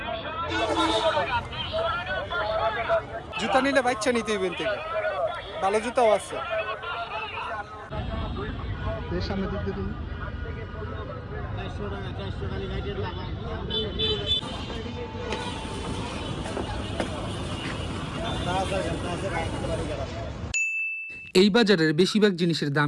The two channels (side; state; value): both; identical; correlation 1.00